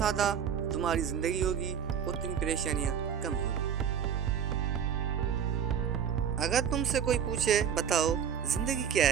तुम्हारी जिंदगी होगी उतनी परेशानियां कम होंगी। अगर तुमसे कोई पूछे बताओ जिंदगी क्या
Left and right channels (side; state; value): left; quieter; 8.1 dB